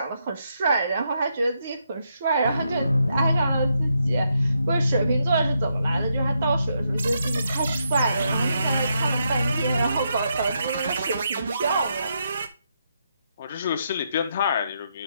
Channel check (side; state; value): both; inverted; correlation -0.80